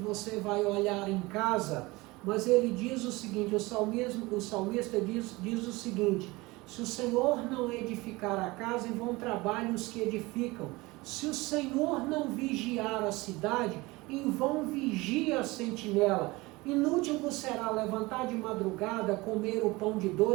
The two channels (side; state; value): left; quieter; 22.2 dB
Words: vai olhar em casa, mas ele diz o seguinte, o salmista diz o seguinte: Se o Senhor não edificar a casa, em vão trabalham os que edificam. Se o Senhor não vigiar a cidade, em vão vigia a sentinela. Inútil vos será levantar de madrugada, comer o pão de